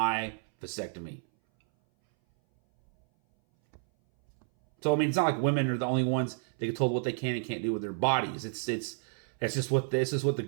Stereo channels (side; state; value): left; silent; 58 dB below the other